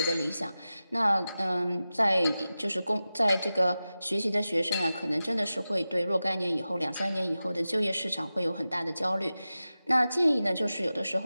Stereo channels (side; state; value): both; inverted; correlation -0.94